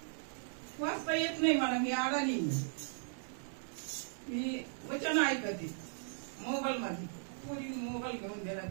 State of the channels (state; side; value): silent; left; digital silence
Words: वाचता येत नाही मला, मी अडाणी. मी वचन ऐकते मोबाईल मध्ये. पुरी मोबाईल घेऊन दिला